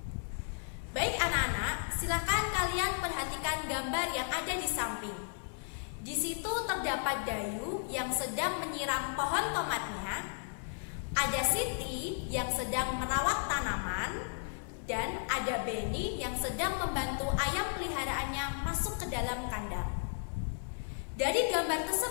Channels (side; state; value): right; silent; digital silence